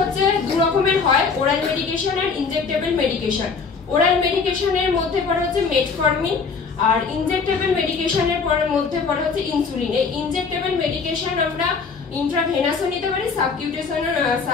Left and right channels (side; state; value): right; quieter; 5.1 dB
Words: দু রকমের হয়, ওরাল মেডিকেশন আর ইনজেক্টেবল মেডিকেশন। ওরাল মেডিকেশনের মধ্যে পড়ে হচ্ছে মেটফর্মিন, আর ইনজেক্টেবল মেডিকেশনের মধ্যে পড়ে হচ্ছে ইনসুলিন। এই ইনজেক্টেবল মেডিকেশন আমরা ইন্ট্রাভেনাসও নিতে পারি,